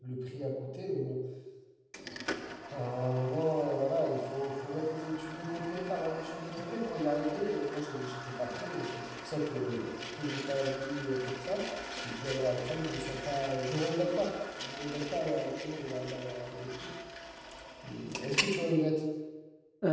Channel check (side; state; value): both; identical; correlation 1.00